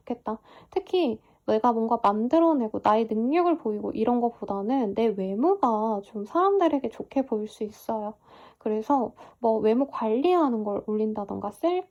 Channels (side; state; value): both; identical; correlation 1.00